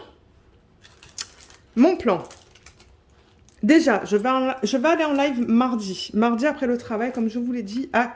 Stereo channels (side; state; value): both; identical; correlation 1.00